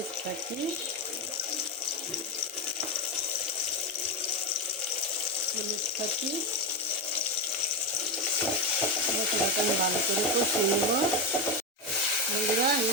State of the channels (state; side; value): normal; both; correlation 0.11